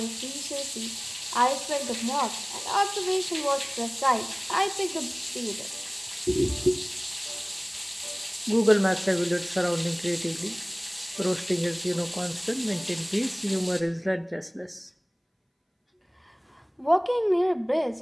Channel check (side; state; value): both; identical; correlation 1.00